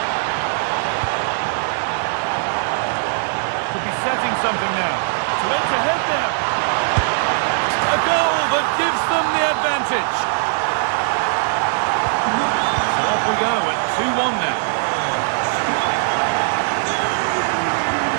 Setting something now. To edge ahead now. A goal that gives them the advantage. So off we go at 2-1 now.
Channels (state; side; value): silent; left; 64 dB below the other